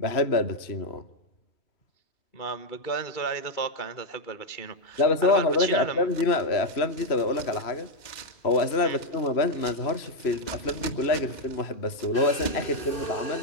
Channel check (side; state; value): right; late; 3.0 ms